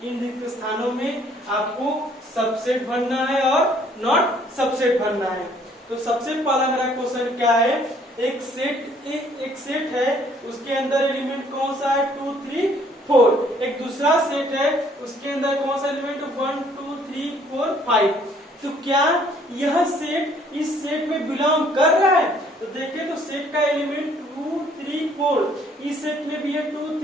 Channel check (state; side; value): normal; both; correlation 0.61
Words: इन रिक्त स्थानों में आपको सबसेट भरना है और नॉट सबसेट भरना है। तो सबसे पहला मेरा क्वेश्चन क्या है, एक सेट है, उसके अंदर एलिमेंट कौन सा है 2 3 4। एक दूसरा सेट है, उसके अंदर कौन सा एलिमेंट 1 2 3 4 5। तो क्या यह सेट इस सेट में बिलोंग कर रहा है? तो देखिए तो सेट का एलिमेंट 2 3 4, इस सेट में भी है 2